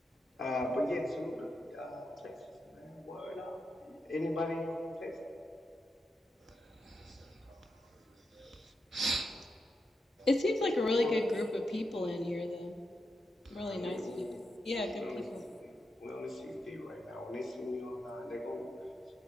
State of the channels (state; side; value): normal; both; correlation 0.86